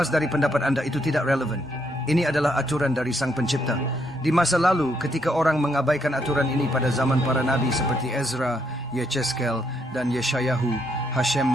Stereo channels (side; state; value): both; normal; correlation 0.74